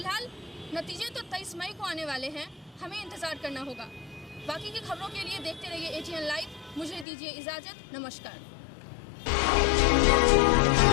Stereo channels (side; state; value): right; drops out; at 7.1 s